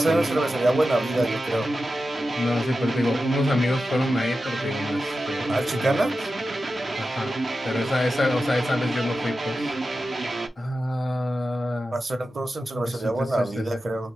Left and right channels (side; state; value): both; normal; correlation 0.92